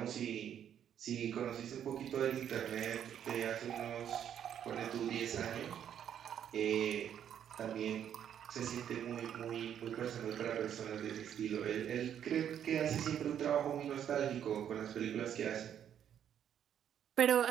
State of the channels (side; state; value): left; quieter; 9.4 dB